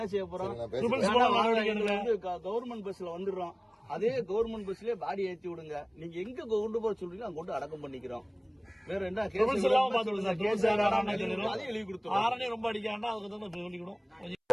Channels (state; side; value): identical; both; correlation 1.00